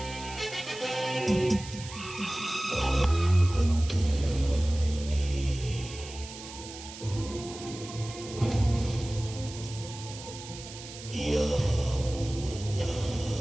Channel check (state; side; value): noise; right; hiss, 13 dB below the sound